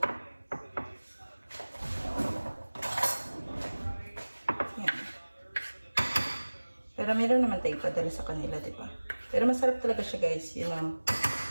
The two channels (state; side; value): inverted; both; correlation -1.00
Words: yan. Pero meron naman tayo padala sa kanila, diba? Pero masarap talaga siya guys, you know.